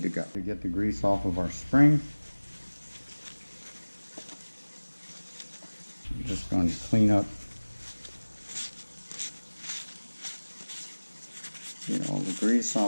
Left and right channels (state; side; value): inverted; both; correlation -1.00